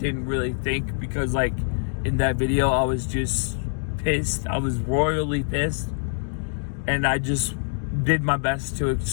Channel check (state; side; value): silent; right; digital silence